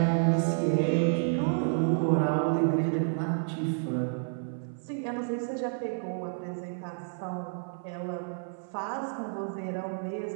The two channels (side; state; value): left; silent; 58 dB below the other